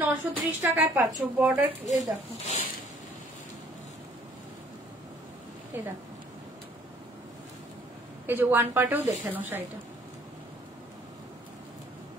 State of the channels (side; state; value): both; normal; correlation 0.59